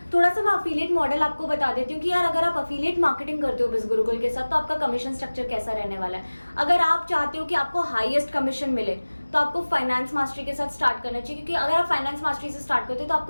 थोड़ा सा मैं अफिलिएट मॉडल आपको बता देती हूँ कि यार अगर आप अफिलिएट मार्केटिंग करते हो बिज़गुरुकुल के साथ तो आपका कमीशन स्ट्रक्चर कैसा रहने वाला है। अगर आप चाहते हो कि आपको हाईएस्ट कमीशन मिले तो आपको फाइनेंस मास्टरी के साथ स्टार्ट करना चाहिए, क्योंकि अगर आप फाइनेंस मास्टरी से स्टार्ट करते हो तो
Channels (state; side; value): inverted; both; correlation -1.00